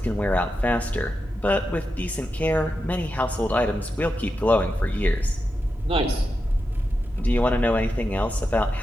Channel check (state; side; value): normal; both; correlation 0.88